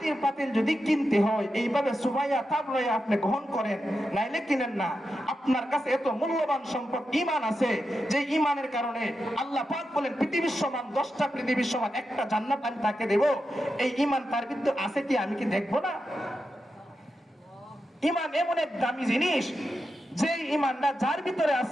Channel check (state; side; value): normal; both; correlation 0.89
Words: পাতিল যদি কিনতে হয় এইভাবে সুবাইয়া তাবলাইয়া আপনি গ্রহণ করেন, নাইলে কিনেন না। আপনার কাছে এত মূল্যবান সম্পদ ঈমান আছে, যে ঈমানের কারণে আল্লাহ পাক বলেন পৃথিবীর সমান 10টা পৃথিবীর সমান একটা জান্নাত আমি তাকে দেব। এই ঈমান তার ভিতরে আছে কি আমি কি দেখবো না? ঈমান এমন এক দামি জিনিস, যে ঈমানটা যার ভিতরে